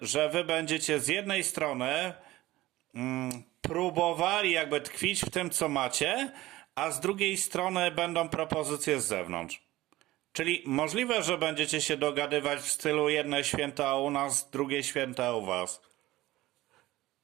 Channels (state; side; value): quieter; left; 17.3 dB